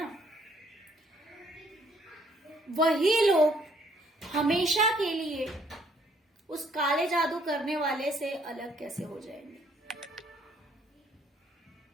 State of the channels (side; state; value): both; normal; correlation 0.65